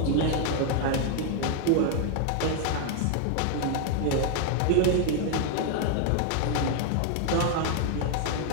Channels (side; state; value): both; different; correlation 0.00